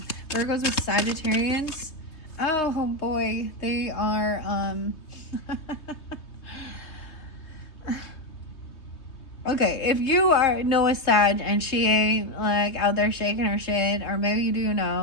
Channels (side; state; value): right; late; 3.2 ms